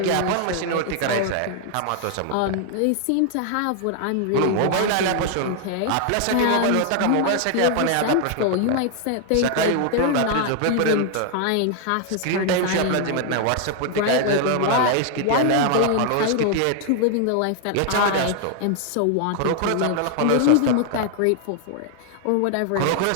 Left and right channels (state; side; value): different; both; correlation 0.00